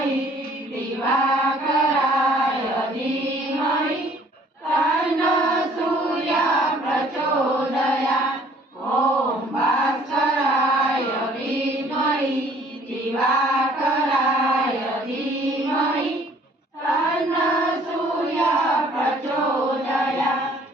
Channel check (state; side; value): normal; both; correlation 0.57